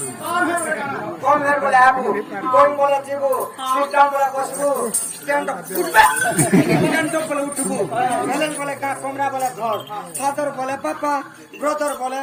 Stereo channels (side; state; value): both; identical; correlation 1.00